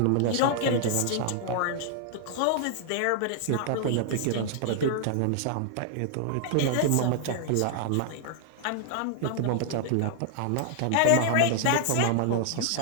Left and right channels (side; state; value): both; different; correlation -0.01